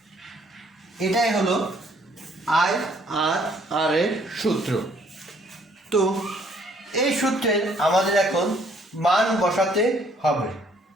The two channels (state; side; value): normal; both; correlation 0.63